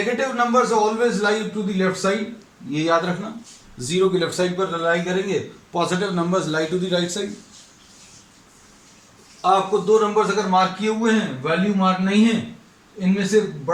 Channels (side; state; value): both; identical; correlation 1.00